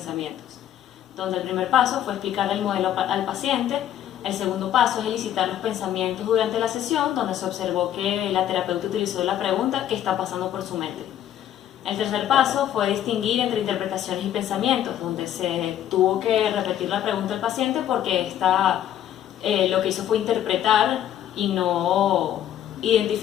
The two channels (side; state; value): right; quieter; 11.1 dB